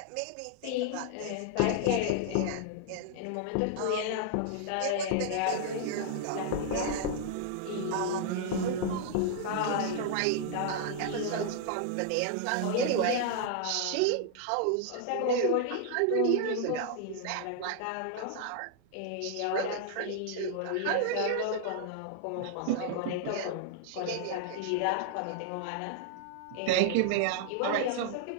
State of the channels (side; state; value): both; different; correlation -0.01